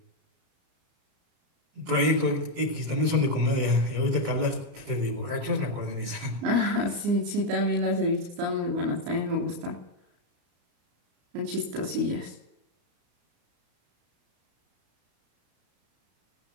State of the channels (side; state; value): left; late; 34 ms